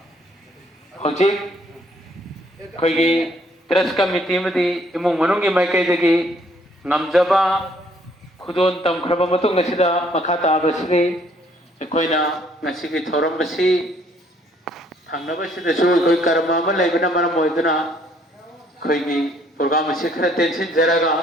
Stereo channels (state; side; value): normal; both; correlation 0.64